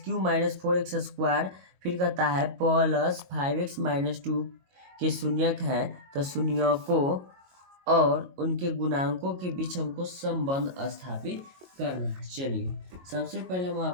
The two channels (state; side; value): late; left; 22 ms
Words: - 4x²। फिर कहता है प्लस 5x - 2 के शून्यक हैं, तो शून्यकों और उनके गुणांकों के बीच हमको संबंध स्थापित करना है। चलिए सबसे पहले हम